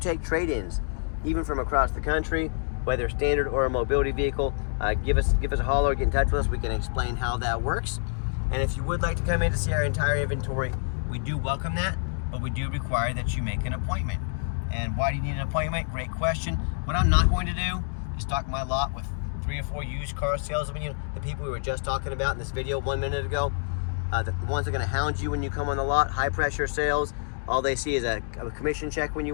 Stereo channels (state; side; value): silent; right; digital silence